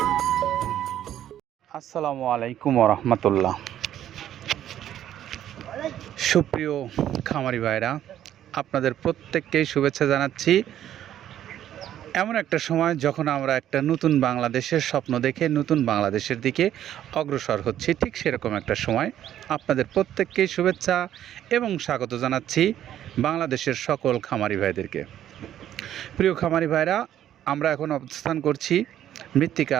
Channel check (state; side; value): quieter; left; 11.4 dB